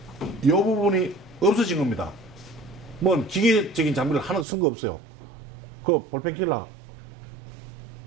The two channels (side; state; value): left; drops out; at 4.5 s